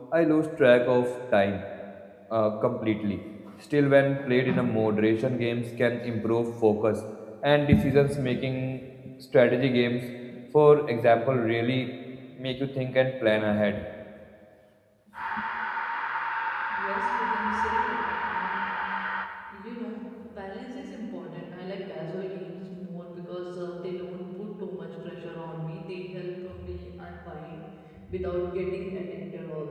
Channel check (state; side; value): identical; both; correlation 1.00